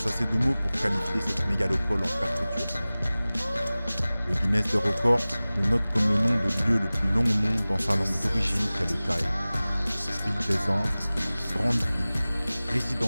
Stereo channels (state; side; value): inverted; both; correlation -0.98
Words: de mots pour qualifier cette mégalopole en perpétuel. Le Guinness des records le note comme le nom de lieu le plus long au monde dans sa langue d'origine qu'est le thaï. Ville des Andes, grande ville,